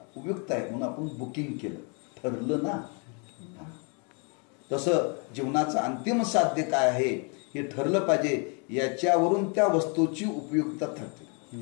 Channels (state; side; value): quieter; right; 36.4 dB